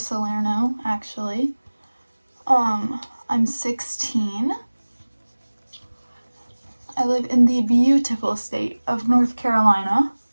actually. I'm 16. I live in the beautiful state of North Carolina.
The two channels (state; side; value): inverted; both; correlation -1.00